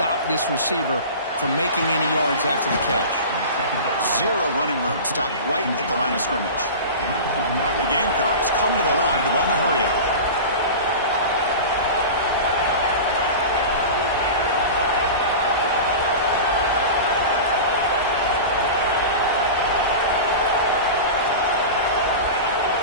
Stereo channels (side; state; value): both; inverted; correlation -0.31